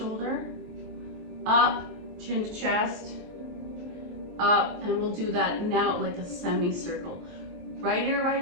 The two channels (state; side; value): late; left; 24 ms